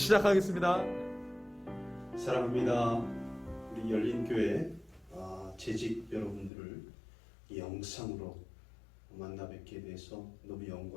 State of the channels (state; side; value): drops out; right; at 6.5 s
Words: 사랑합니다. 우리 열린교회 재직 여러분들을 이 영상으로 만나 뵙게 돼서 너무